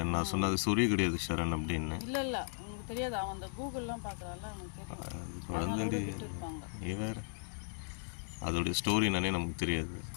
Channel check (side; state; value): right; silent; digital silence